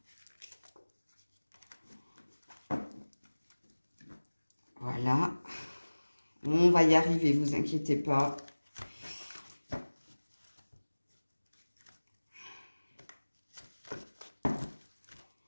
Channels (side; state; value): both; inverted; correlation -1.00